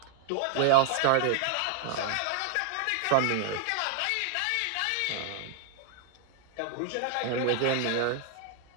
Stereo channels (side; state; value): both; different; correlation 0.00